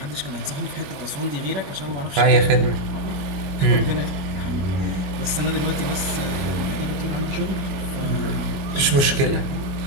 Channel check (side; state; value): left; late; 22 ms